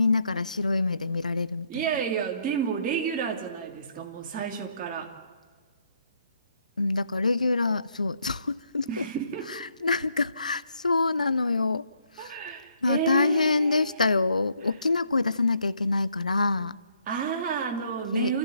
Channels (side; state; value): both; inverted; correlation -0.70